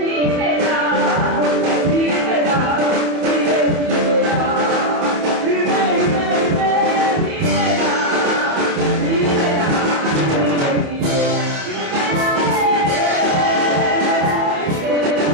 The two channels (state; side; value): late; left; 27 ms